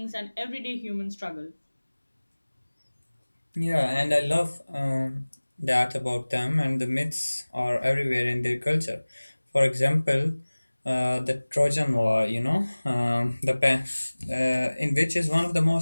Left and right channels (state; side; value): inverted; both; correlation -1.00